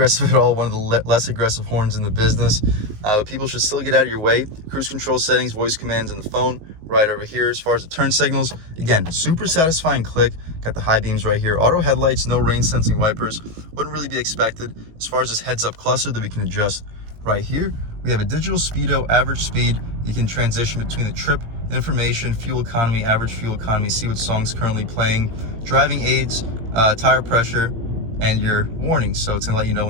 at all, one of the less aggressive horns in the business. But people should still get out of your way. Cruise control settings, voice commands on the phone right over here. As far as the turn signals, again, super satisfying click. Got the high beams right here. Auto headlights, no rain sensing wipers. Wouldn't really be expected. As far as this heads-up cluster that we can adjust right here, we have a digital speedo, average speed. You can transition between the trip, information, fuel economy, average fuel economy, see what song's currently playing, driving aids, tire pressure, and your warnings. So it's gonna let you know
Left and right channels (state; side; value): late; left; 18 ms